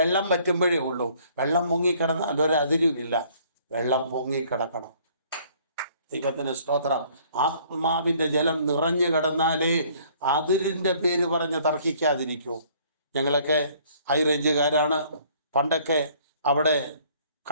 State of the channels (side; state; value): both; inverted; correlation -0.59